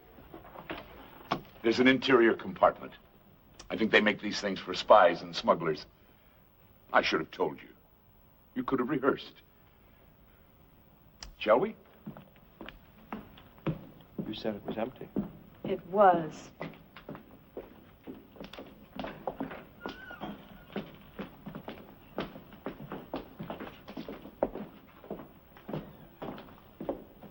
There's an interior compartment. I think they make these things for spies and smugglers. I should have told you. You could have rehearsed. Shall we? You said it was empty. It was.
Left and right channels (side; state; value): both; identical; correlation 1.00